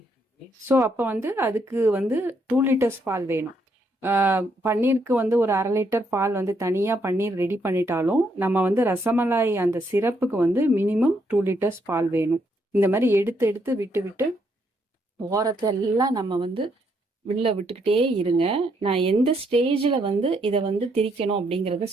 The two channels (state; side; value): normal; both; correlation 0.74